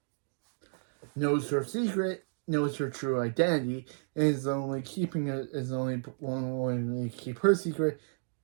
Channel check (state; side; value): silent; left; digital silence